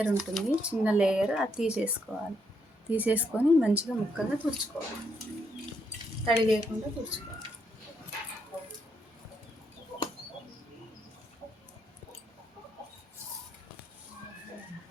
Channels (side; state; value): both; normal; correlation 0.77